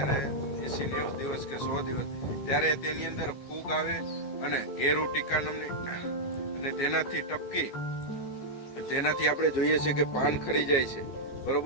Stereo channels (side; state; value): right; late; 15 ms